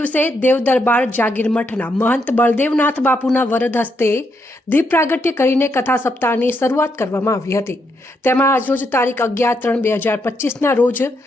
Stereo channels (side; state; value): both; normal; correlation 0.79